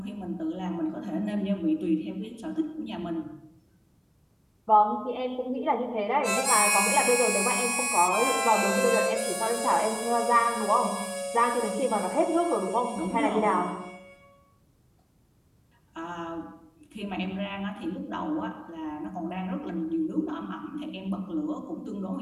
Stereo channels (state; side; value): identical; both; correlation 1.00